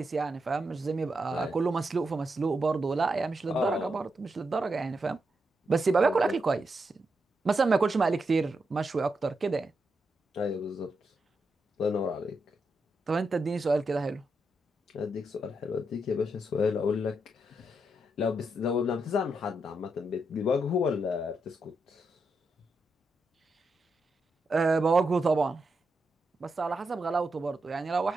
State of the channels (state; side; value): normal; both; correlation 0.84